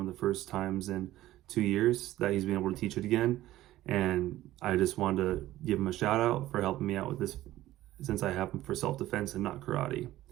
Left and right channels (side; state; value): left; quieter; 15.2 dB